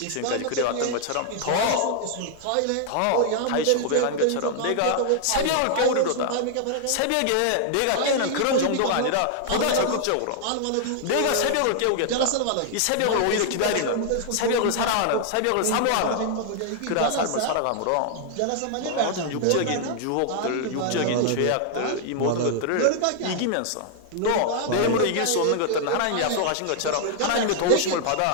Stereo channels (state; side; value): different; both; correlation 0.00